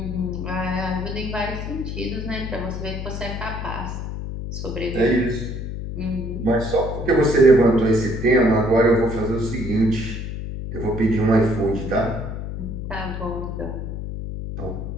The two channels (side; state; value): left; noise; hum, 6 dB below the sound